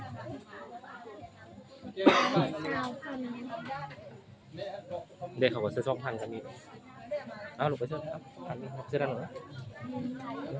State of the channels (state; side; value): identical; both; correlation 1.00